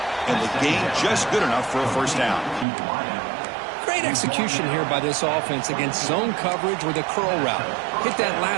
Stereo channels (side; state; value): left; drops out; at 2.7 s